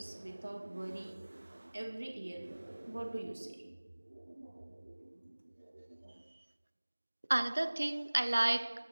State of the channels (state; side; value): inverted; both; correlation -1.00